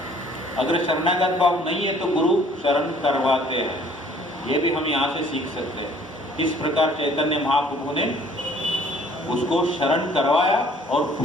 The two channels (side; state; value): both; normal; correlation 0.56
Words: अगर शरणागत भाव नहीं है तो गुरु शरण करवाते हैं। ये भी हम यहाँ से सीख सकते हैं। इस प्रकार चैतन्य महाप्रभु ने उसको शरण करवाया, और